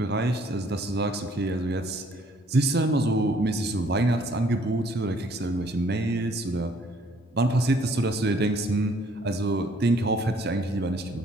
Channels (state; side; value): normal; both; correlation 0.61